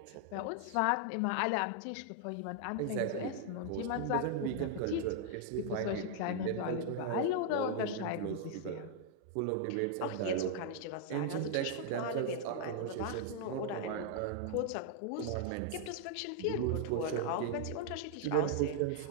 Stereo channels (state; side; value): different; both; correlation 0.00